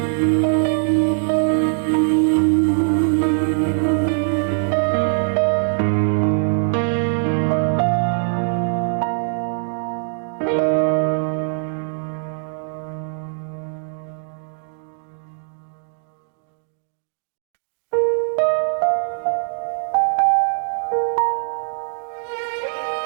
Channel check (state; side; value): silent; left; digital silence